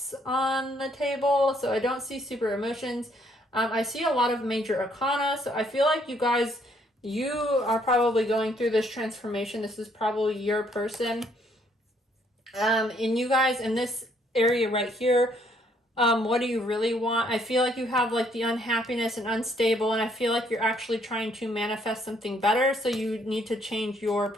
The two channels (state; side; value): normal; both; correlation 0.68